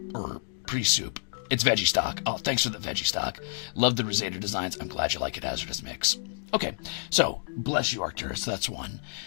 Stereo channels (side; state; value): right; silent; 59 dB below the other